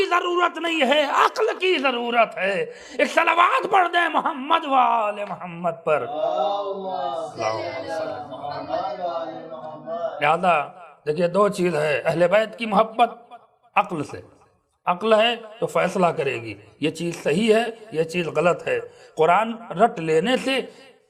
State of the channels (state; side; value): identical; both; correlation 1.00